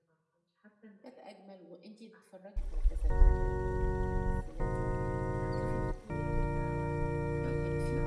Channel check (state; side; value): identical; both; correlation 1.00